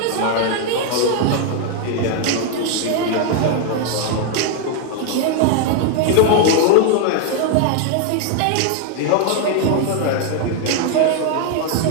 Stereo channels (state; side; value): different; both; correlation 0.00